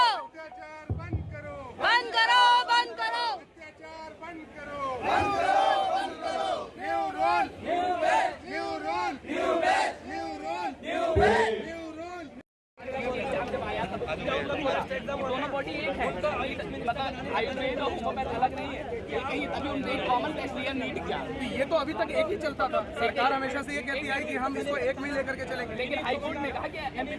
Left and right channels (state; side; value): identical; both; correlation 1.00